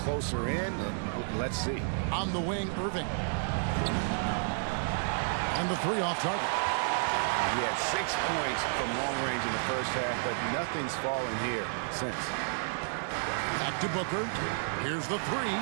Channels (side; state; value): left; silent; 56 dB below the other